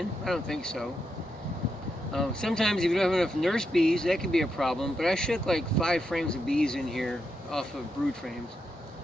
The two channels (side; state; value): both; normal; correlation 0.84